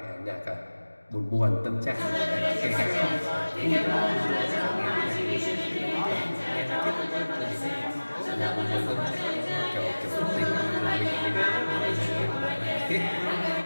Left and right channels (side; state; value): both; inverted; correlation -1.00